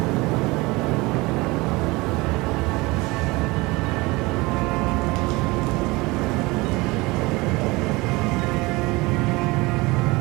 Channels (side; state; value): left; quieter; 22.9 dB